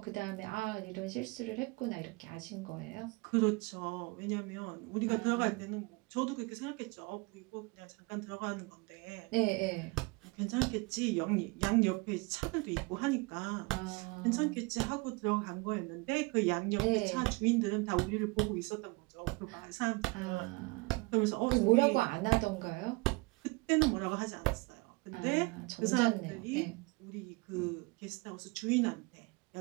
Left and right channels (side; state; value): left; quieter; 25.9 dB